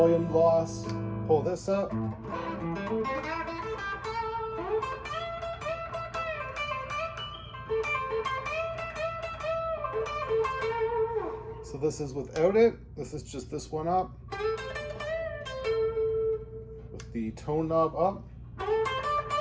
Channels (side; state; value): both; identical; correlation 1.00